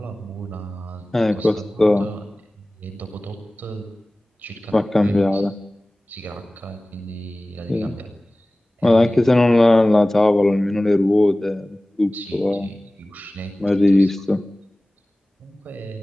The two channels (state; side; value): normal; both; correlation 0.98